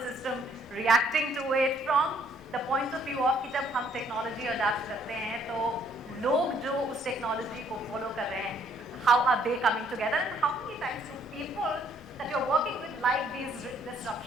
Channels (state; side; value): normal; both; correlation 0.65